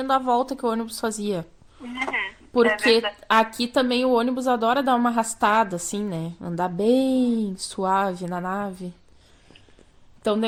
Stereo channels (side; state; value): both; identical; correlation 1.00